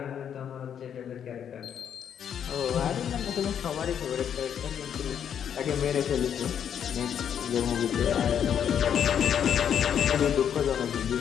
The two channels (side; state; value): right; quieter; 8.7 dB